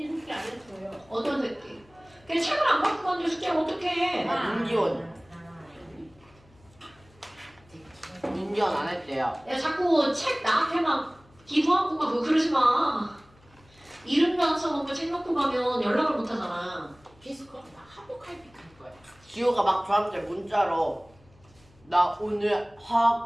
숙제 안 했어요. 어떤 새끼? 그냥 책을 안 갖고 갔는데 숙제를 어떻게 해? 문기원. 문기원 안 했대요. 야, 자꾸 책 나한테 막 기부하고 가고 그러지 마. 이름도 안 써놓고 책 놓고 가면 연락을 못 하잖아. 피스코 나 한복할픽 할 거야. 지호가 막 저한테 문자로 나 오늘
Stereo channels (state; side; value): noise; left; hum, 29 dB below the sound